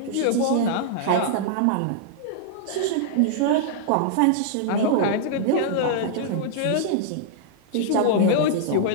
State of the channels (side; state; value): both; different; correlation -0.01